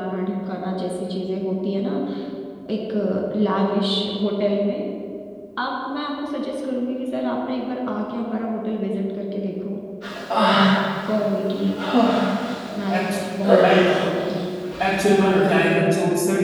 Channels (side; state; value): both; identical; correlation 1.00